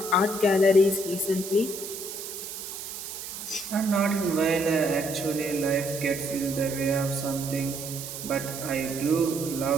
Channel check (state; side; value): noise; right; hiss, 8 dB below the sound